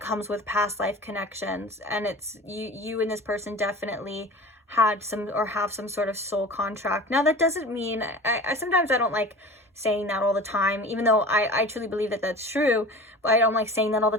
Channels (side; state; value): both; normal; correlation 0.38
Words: comes with past life connections. And it's you and this person definitely had some, or have some sort of soul contract. Now that doesn't mean, I sometimes I don't like saying that all the time, even though I truly believe that that's true, but I don't like saying that all the